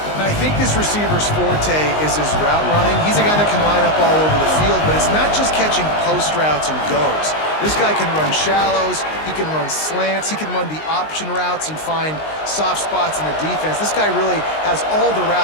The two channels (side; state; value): right; late; 19 ms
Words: And I think this receiver's forte is his route running. He's a guy that can line up all over the field, but it's not just catching post routes and goes. This guy can run shallows, he can run slants, he can run the option routes and find soft spots in the defense. This guy really has all the